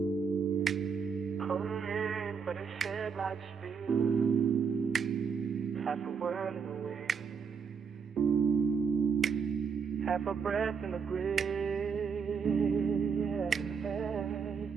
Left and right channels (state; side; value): quieter; left; 6.0 dB